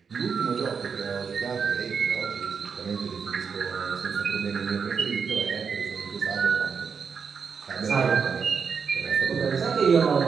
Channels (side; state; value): left; quieter; 6.0 dB